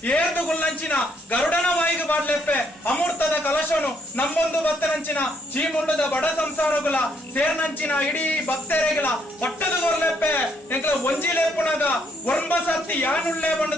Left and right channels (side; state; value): both; normal; correlation 0.71